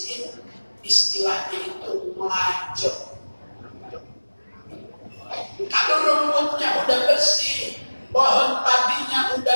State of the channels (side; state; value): both; inverted; correlation -1.00